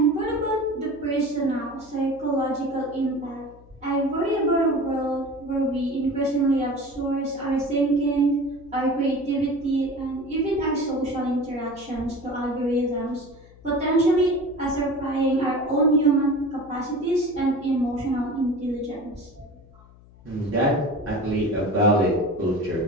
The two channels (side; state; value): left; noise; hum, 24 dB below the sound